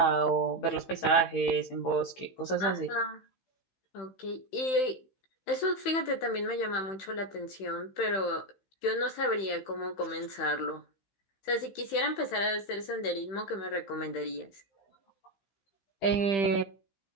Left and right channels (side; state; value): right; late; 15 ms